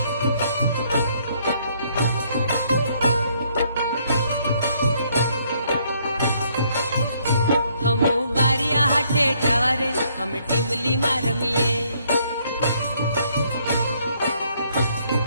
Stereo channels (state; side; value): inverted; both; correlation -0.68